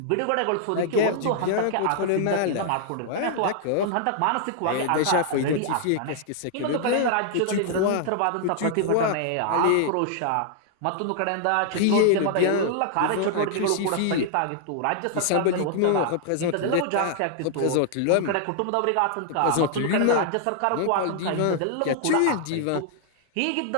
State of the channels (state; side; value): different; both; correlation -0.01